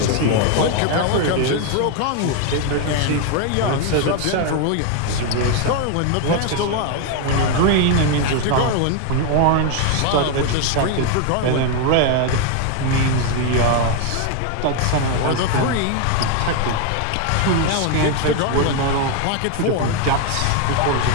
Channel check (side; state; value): both; different; correlation 0.01